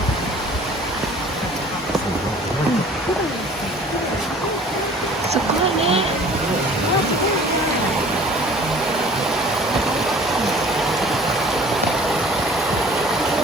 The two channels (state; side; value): normal; both; correlation 0.49